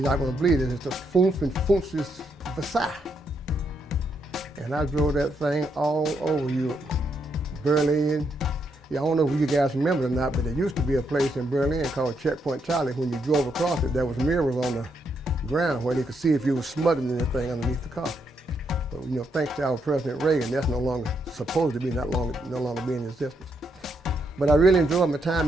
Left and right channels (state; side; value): normal; both; correlation 0.78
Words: not going to believe it. It's the Funfenfunsis Versailles. And I drove that thing all over Europe. Berlin. Yeah, I don't know if you guys remember it or not, but there used to be a place in Berlin called Checkpoint Charlie. When you drove across it, there was mirrors on the ground where they could see if you were smuggling anything underneath the car. But thanks to our President Reagan, that's no longer supposed to be, no longer be in existence. But I really enjoyed my